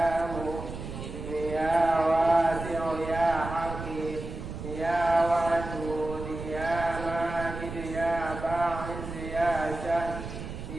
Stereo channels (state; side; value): noise; right; rumble, 9 dB below the sound